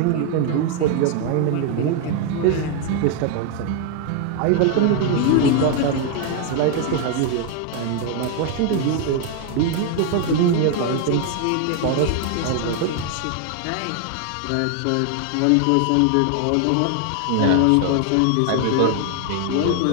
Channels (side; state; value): both; different; correlation 0.00